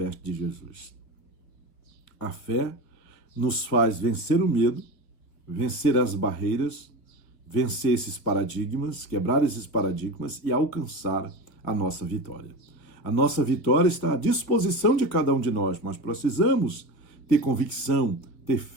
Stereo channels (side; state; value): right; late; 3.0 ms